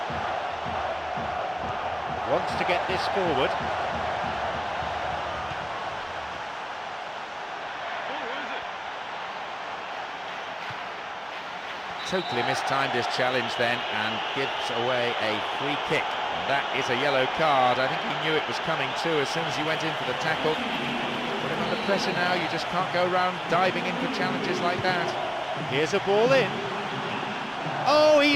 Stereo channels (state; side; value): identical; both; correlation 1.00